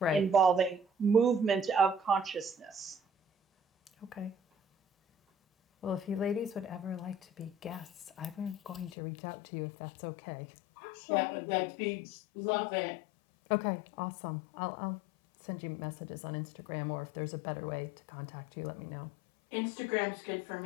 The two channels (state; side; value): drops out; right; at 8.9 s